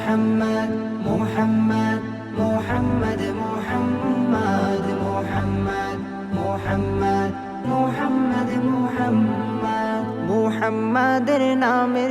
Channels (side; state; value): both; identical; correlation 1.00